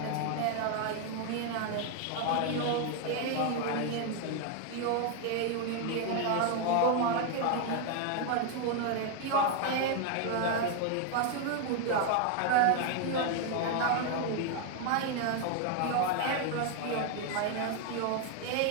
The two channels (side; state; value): both; different; correlation 0.01